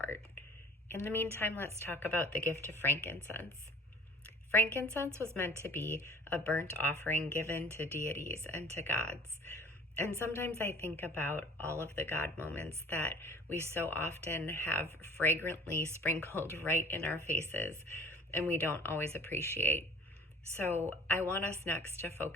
In the meantime, let's talk about the gift of frankincense. Frankincense was meant to be a burnt offering given to deities and to gods. And sometimes I think about all of the God moments that we so often have fragrantly sprinkled right in our faces and we don't always appreciate. So I want us next to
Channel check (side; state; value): both; normal; correlation 0.46